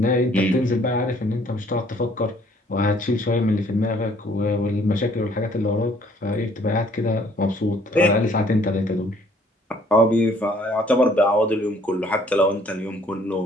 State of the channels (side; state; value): both; normal; correlation 0.60